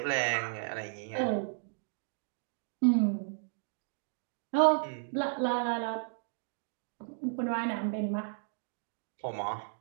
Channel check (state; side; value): silent; left; digital silence